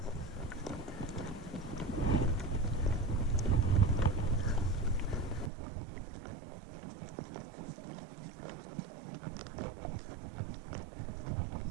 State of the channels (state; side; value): drops out; left; at 5.5 s